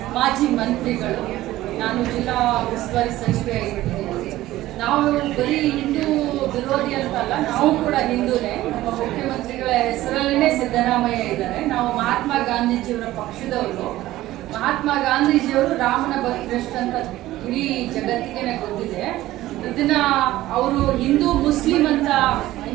ಮಾಜಿ ಮಂತ್ರಿಗಳು. ನಾನು ಜಿಲ್ಲಾ ಉಸ್ತುವಾರಿ ಸಚಿವೆ ಆಗಿಬಿಟ್ಟಿದ್ದೀನಿ. ನಾವು ಬರೀ ಹಿಂದೂ ವಿರೋಧಿ ಅಂತಲ್ಲ, ನಾವು ಕೂಡ ಹಿಂದೂನೇ. ನಮ್ಮ ಮುಖ್ಯಮಂತ್ರಿಗಳ ಹೆಸರಲ್ಲೇ ಸಿದ್ದರಾಮಯ್ಯ ಇದ್ದಾರೆ. ನಾವು ಮಹಾತ್ಮ ಗಾಂಧೀಜಿಯವರ ಪಕ್ಷದವರು. ಮಹಾತ್ಮ ಗಾಂಧೀಜಿಯವರು ರಾಮನ ಭಕ್ತರಷ್ಟು ಅಂತ ಇಡೀ ಜಗತ್ತಿಗೆ ಗೊತ್ತಿದೆ. ಇದನ್ನ ಅವರು ಹಿಂದೂ ಮುಸ್ಲಿಂ ಅಂತ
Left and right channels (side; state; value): left; quieter; 15.8 dB